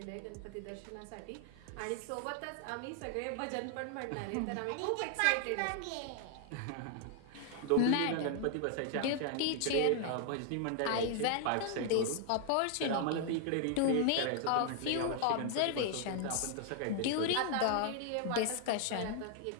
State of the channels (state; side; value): different; both; correlation 0.00